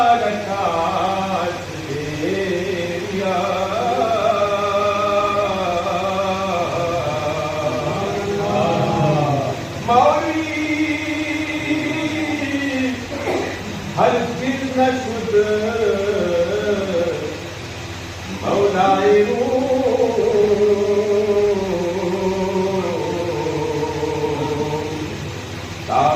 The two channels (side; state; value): both; identical; correlation 1.00